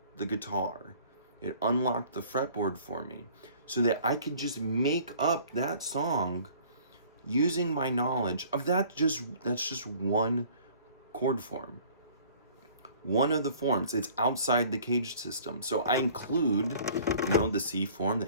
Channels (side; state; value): both; inverted; correlation -0.52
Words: the guitar. It unlocked the fretboard for me so that I could just make up that song using my knowledge of that's just one chord form. One of the forms. It's outside the caged system. So I include, the C form,